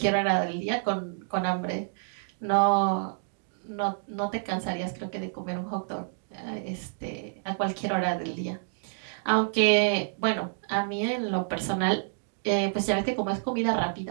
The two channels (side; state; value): left; silent; digital silence